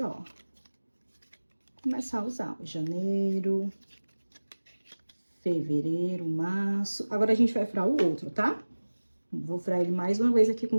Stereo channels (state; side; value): inverted; both; correlation -1.00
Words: ó, começar a usar janeiro, fevereiro, março. Agora, a gente vai furar o outro, tá? Vou furar ele mais uma vez aqui com